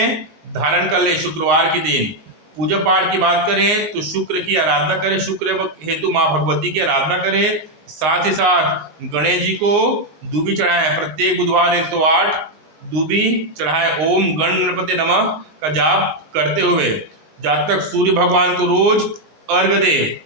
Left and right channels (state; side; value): late; left; 19 ms